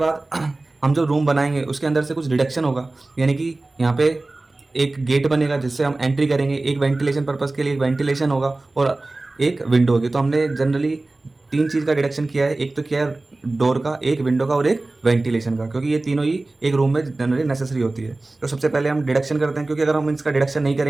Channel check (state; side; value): quieter; left; 3.0 dB